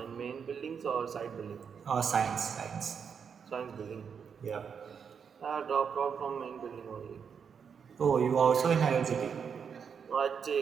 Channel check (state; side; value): quieter; left; 6.8 dB